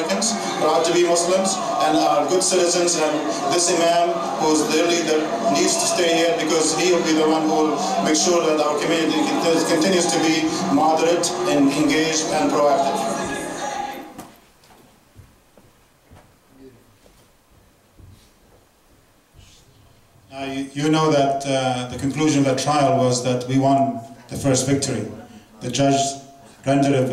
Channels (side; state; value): both; identical; correlation 1.00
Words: proud to be Muslims, and are good citizens, and this Imam, who is their leader, needs to stay here because he will be the one who will make sure that our community continues to be moderate and engaged and proactive. You know that the conclusion of that trial was that we won the first victory. The judge rendered